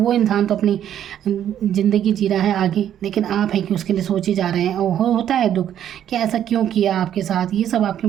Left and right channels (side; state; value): left; quieter; 10.3 dB